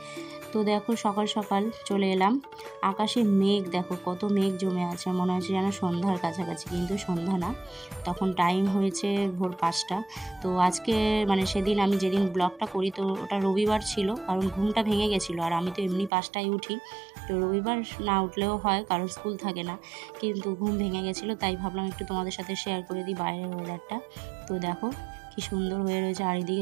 তো দেখো সকাল সকাল চলে এলাম। আকাশে মেঘ দেখো, কত মেঘ জমে আছে, মনে হচ্ছে যেন সন্ধ্যার কাছাকাছি, কিন্তু সন্ধ্যা না, তখন টাইম হয়েছে ভোর 5টা। তো আজকে সেদিন আমি যেদিন ব্লগটা করি, তো ওটা রবিবার ছিল, কারণ ঘুমটা ভেঙে গেছিলো। আর আমি তো এমনি 5টায় উঠি, তো রবিবার না উঠলেও হয়, কারণ স্কুল থাকে না, কিন্তু ঘুম ভেঙে গেছিলো, তাই ভাবলাম একটু তোমাদের সাথে শেয়ার করে দিই বাইরের ওয়েদারটা। তো দেখো কি সুন্দর হয়ে রয়েছে, আর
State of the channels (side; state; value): left; drops out; at 16.1 s